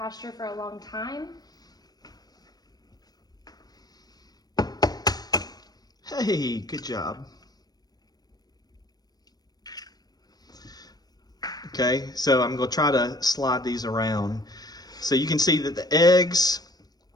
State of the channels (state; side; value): late; right; 0.19 ms